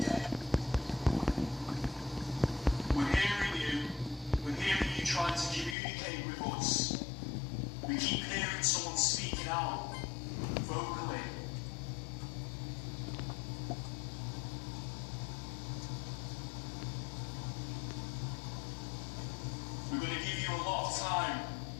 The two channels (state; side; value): drops out; right; at 5.8 s